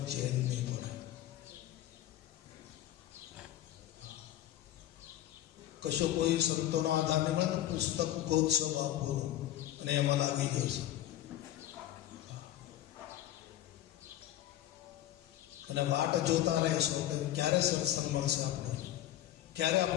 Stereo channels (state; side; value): quieter; right; 13.2 dB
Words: ચેન નહીં પડે. કશો કોઈ સંતોનો આધાર નહીં મળે તો પુસ્તક ગોતશો આપો અને એમાં લાગી જશે. અને વાટ જોતા રહેશો કે ક્યારે સત્સંગ મળશે આપણને, ક્યારે